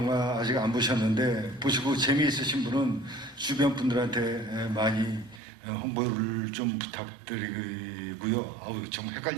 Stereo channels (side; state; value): left; drops out; at 5.4 s